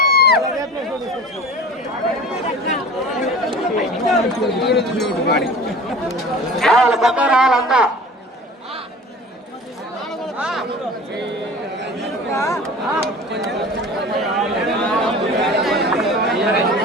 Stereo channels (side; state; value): both; normal; correlation 0.39